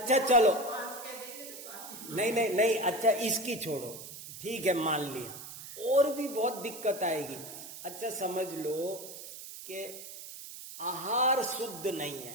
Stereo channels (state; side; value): noise; right; hiss, 12 dB below the sound